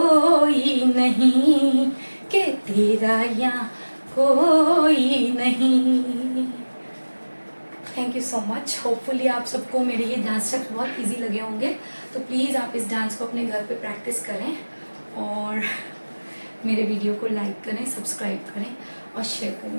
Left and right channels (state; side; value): inverted; both; correlation -1.00